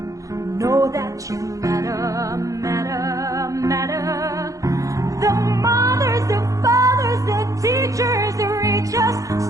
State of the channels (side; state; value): left; late; 0.16 ms